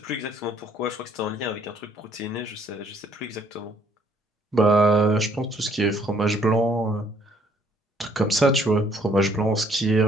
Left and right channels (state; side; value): normal; both; correlation 0.63